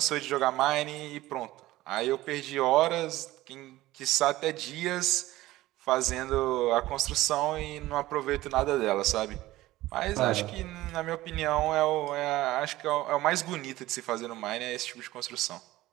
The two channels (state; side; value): quieter; left; 16.8 dB